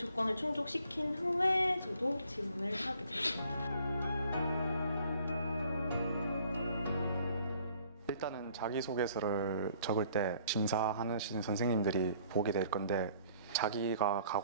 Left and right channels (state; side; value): inverted; both; correlation -0.59